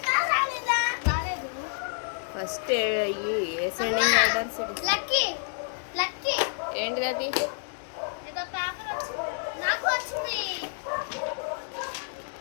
రాలేదా? రాలేదు. First ascending orders. Lucky lucky ఏంటిది అది? ఏదో పేపర్ వచ్చింది. నాకు వచ్చింది.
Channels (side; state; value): right; silent; digital silence